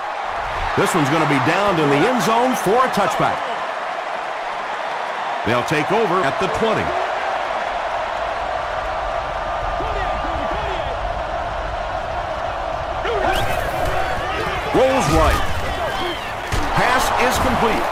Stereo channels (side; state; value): both; identical; correlation 1.00